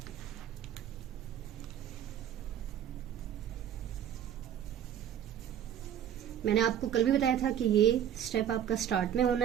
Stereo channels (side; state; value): left; quieter; 9.9 dB